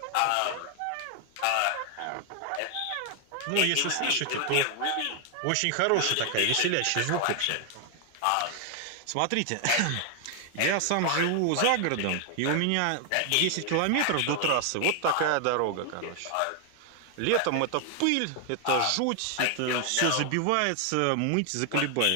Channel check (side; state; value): both; different; correlation 0.00